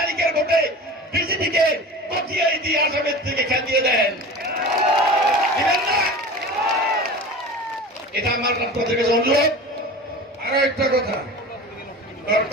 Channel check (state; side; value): normal; both; correlation 0.34